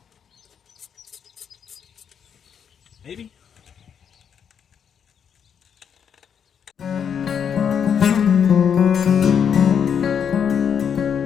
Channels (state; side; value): quieter; right; 7.7 dB